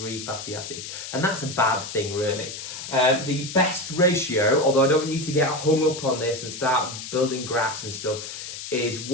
fatty acids. And that's a bad thing, really. The best ratio, although I don't want you to get hung up on this and start building graphs and stuff, is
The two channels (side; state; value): left; noise; hiss, 9 dB below the sound